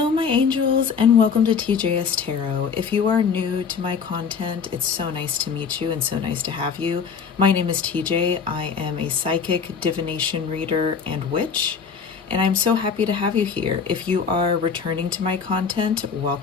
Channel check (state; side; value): quieter; right; 6.1 dB